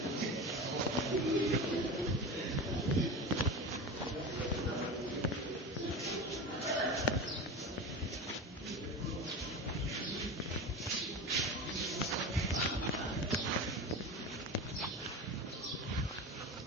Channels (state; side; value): normal; both; correlation 0.27